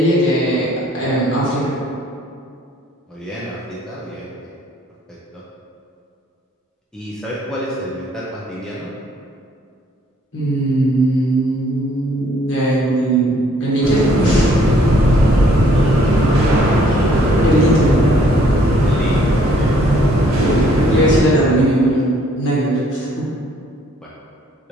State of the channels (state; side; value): normal; both; correlation 0.63